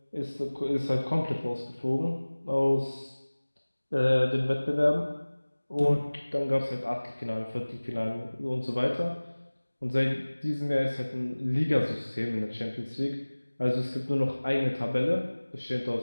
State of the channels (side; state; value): both; inverted; correlation -1.00